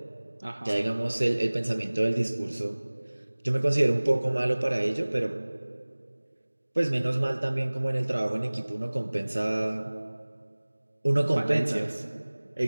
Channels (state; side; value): inverted; both; correlation -1.00